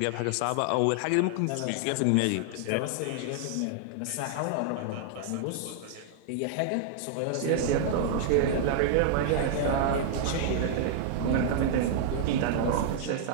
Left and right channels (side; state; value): both; different; correlation -0.01